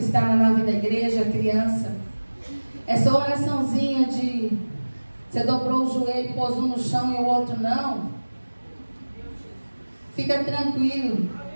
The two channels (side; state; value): both; inverted; correlation -1.00